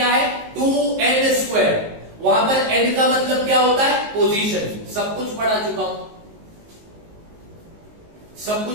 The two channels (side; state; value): left; late; 19 ms